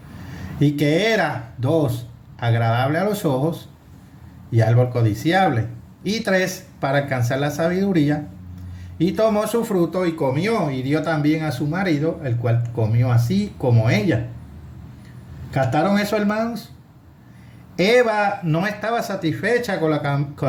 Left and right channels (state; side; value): identical; both; correlation 1.00